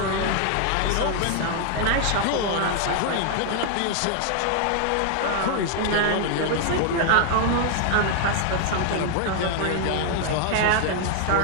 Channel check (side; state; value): both; different; correlation 0.00